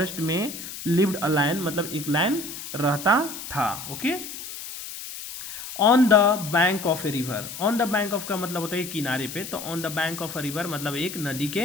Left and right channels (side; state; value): left; noise; hiss, 10 dB below the sound